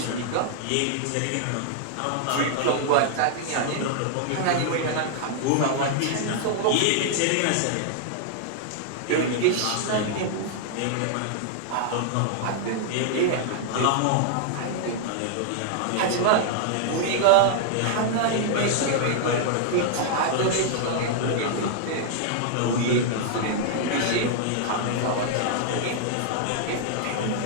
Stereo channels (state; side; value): different; both; correlation -0.01